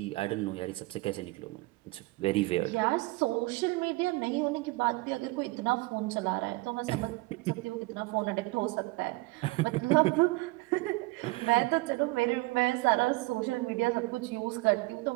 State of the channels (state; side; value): quieter; left; 22.9 dB